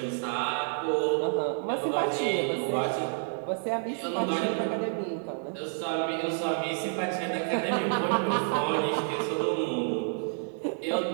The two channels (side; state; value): left; silent; digital silence